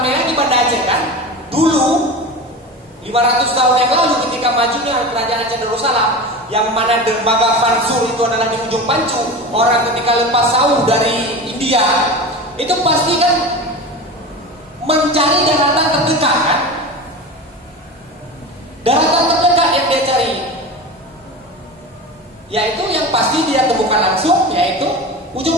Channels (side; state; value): both; normal; correlation 0.29